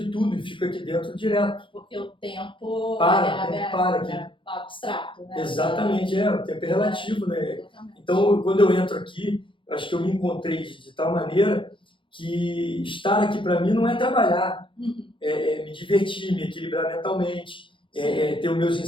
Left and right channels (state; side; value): late; right; 0.25 ms